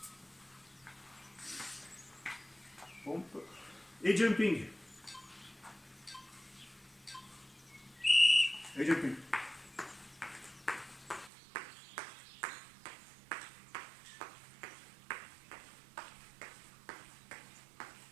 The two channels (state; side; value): drops out; left; at 11.3 s